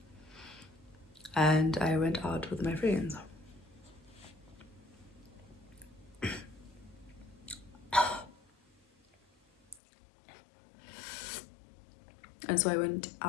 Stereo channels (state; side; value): drops out; right; at 9.8 s